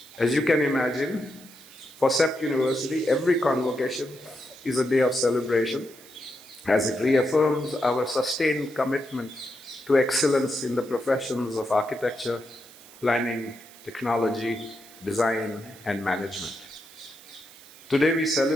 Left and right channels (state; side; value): noise; right; hiss, 21 dB below the sound